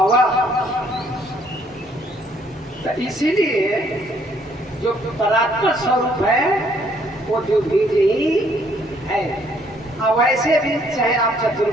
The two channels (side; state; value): both; normal; correlation 0.66